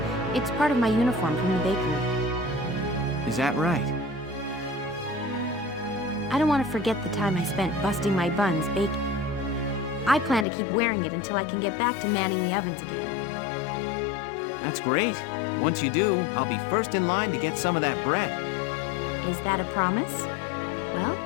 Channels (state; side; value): drops out; right; at 10.5 s